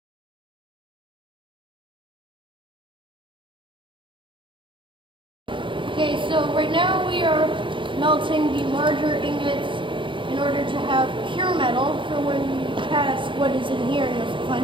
okay, so right now we are melting the larger ingots in order to have pure metal for when we cast what is in here, and you'll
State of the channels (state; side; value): late; left; 0.24 ms